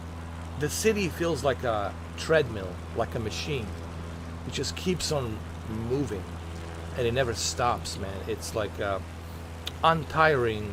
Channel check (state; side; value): identical; both; correlation 1.00